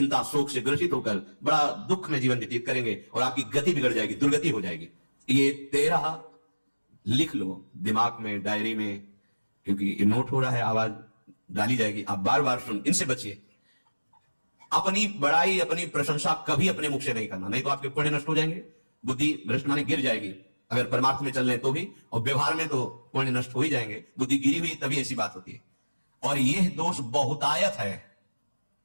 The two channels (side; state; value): both; inverted; correlation -1.00